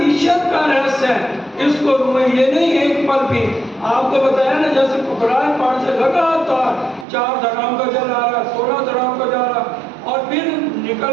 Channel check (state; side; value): drops out; left; at 7.1 s